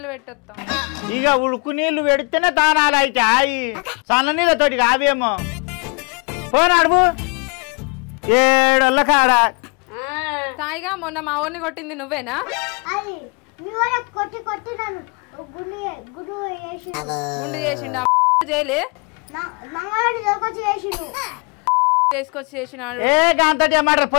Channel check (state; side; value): quieter; right; 34.5 dB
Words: పెట్టొస్తాం. ఇక ఉడుకు నీళ్లు పెడితేనే దానాలు అయితే అయి సన్న నీళ్ళతోటి కావేమో. పోను అడుగు ఏడోళ్ళ కాడ. సాయిగా మొన్న మా ఊరిని కొట్టింది నువ్వేనా? గుండు చేసిండు చేయలే చేసుకొచ్చి చేసినాడు. ఏ గాంతటి ఏమంటారు